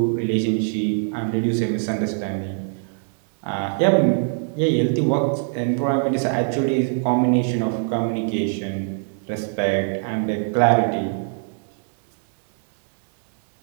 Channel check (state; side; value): silent; left; 63 dB below the other